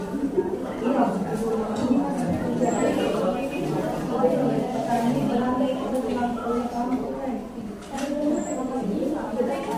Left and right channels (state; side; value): identical; both; correlation 1.00